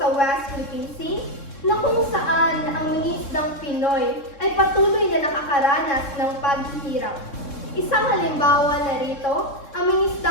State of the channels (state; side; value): late; right; 3.7 ms